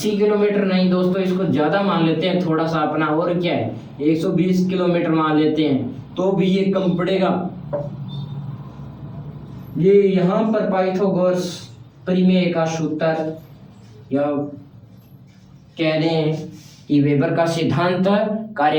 किलोमीटर नहीं दोस्तों, इसको ज्यादा मान लेते हैं थोड़ा सा अपना, और क्या है 120 किलोमीटर मान लेते हैं तो भी ये कम पड़ेगा। ये यहाँ पर पाइथागोरस प्रमेय का सूत्र या कह दें कि वेबर का सिद्धांत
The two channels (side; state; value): both; identical; correlation 1.00